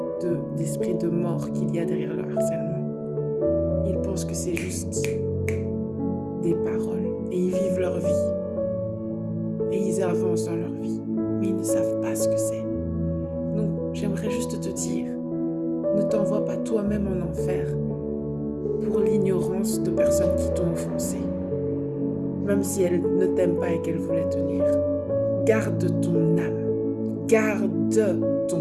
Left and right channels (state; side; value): identical; both; correlation 1.00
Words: d'esprits de mort qu'il y a derrière le harcèlement. Ils pensent que c'est juste des paroles et ils vivent leur vie. Et ils avancent dans leur vie, mais ils ne savent pas ce que c'est. Donc, j'aimerais juste te dire, ne t'envoie pas toi-même en enfer pour l'ignorance de personnes qui t'ont offensé, même si elles ne t'aiment pas et qu'elles voulaient te nuire. Garde ton âme, garde